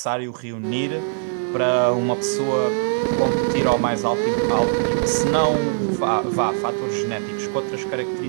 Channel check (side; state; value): left; silent; digital silence